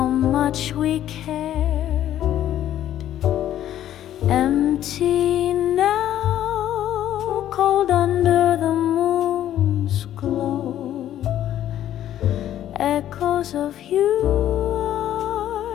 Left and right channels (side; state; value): right; quieter; 11.8 dB